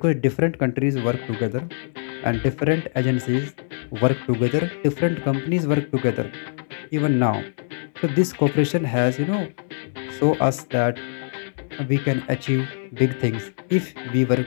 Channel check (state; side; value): silent; right; digital silence